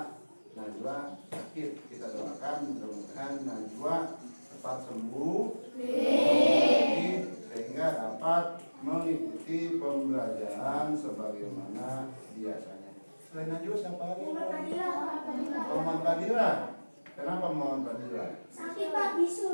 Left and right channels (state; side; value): inverted; both; correlation -1.00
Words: Najwa sakit, kita doakan mudah-mudahan Najwa cepat sembuh sehingga dapat mengikuti pembelajaran sebagaimana biasanya. Selain Najwa siapa lagi? Muhammad Fadila. Kenapa Muhammad Fadila? Sakit Pak,